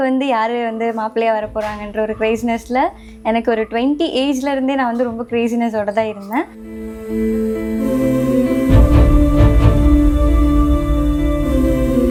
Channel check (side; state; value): both; identical; correlation 1.00